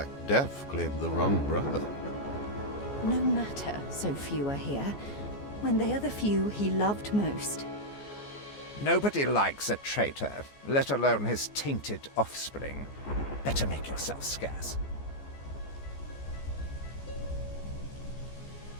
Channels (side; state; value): right; late; 14 ms